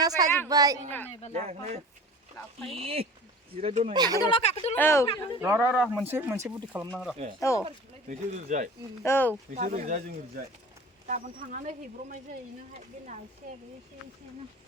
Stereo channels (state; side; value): normal; both; correlation 0.39